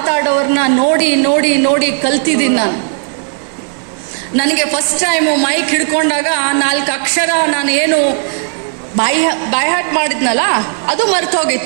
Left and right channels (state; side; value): silent; left; 59 dB below the other